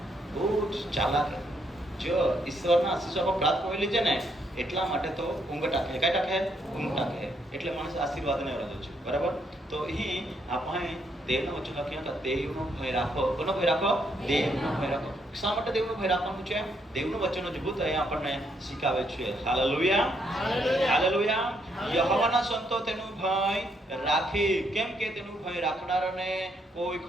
બહુ ચાલાક. જો ઈશ્વરના આશીર્વાદ પ્રાપ્ત કરી લીધે ને એટલા માટે તો ઊંઘ ટાકે. કઈ ટાકે? ઊંઘ ટાકે. એટલે માણસ આશીર્વાદને વરદે છે. બરાબર? તો અહીં આપણે દેવના વચન લખ્યા કે દેવનો ભય રાખો. કોનો ભય રાખો? દેવનો ભય રાખો. શા માટે દેવનો ભય રાખવાનું છે? દેવનું વચન અદ્ભુત અહીંયા આપણને શીખાવે છે. Hallelujah, hallelujah. યહોવાના સંતો તેનું ભય રાખી, કેમ કે તેનું ભય રાખનારને કોઈ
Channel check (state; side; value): normal; both; correlation 0.74